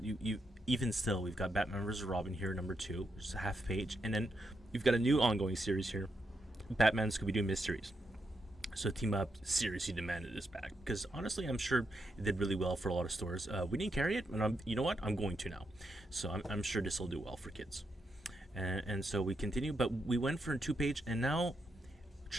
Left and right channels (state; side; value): normal; both; correlation 0.83